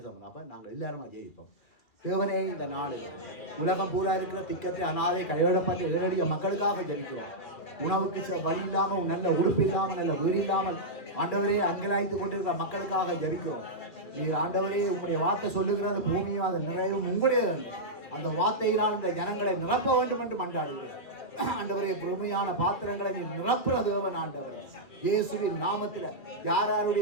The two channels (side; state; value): right; late; 2.4 ms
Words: அப்போ நாங்கள் எல்லாருமே ஜெயிப்போம். தேவனே இந்த நாள் உலகம் பூரா இருக்கிற திக்கத்தை அனாதை கைவிடப்பட்ட ஏழடிய மக்களுக்காக ஜெயிக்கிறோம். உணவுக்கு வழி இல்லாமல், நல்ல உடுப்பு இல்லாமல், நல்ல வீடு இல்லாமல் ஆண்டவரே அங்கலாய்த்து கொண்டிருக்கிற மக்களுக்காக ஜெபிக்கிறோம். நீர் ஆண்டவரே உங்களுடைய வார்த்தை சொல்லுகிறது பூமியும் அதன் நிறைவும் உங்களுடைய அந்த வார்த்தையினால் இந்த ஜனங்களை நிரப்ப வேண்டும் என்று மன்றாடுகிறேன் ஆண்டவரே. பெருமையான பாத்திரங்களை நீ நிரப்புற தேவன் ஆண்டவரே. இயேசுவின் நாமத்தில் யார்